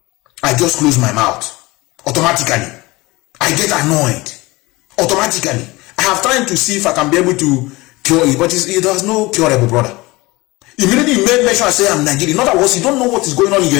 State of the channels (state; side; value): quieter; right; 22.0 dB